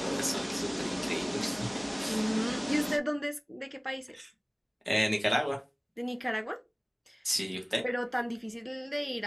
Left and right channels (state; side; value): identical; both; correlation 1.00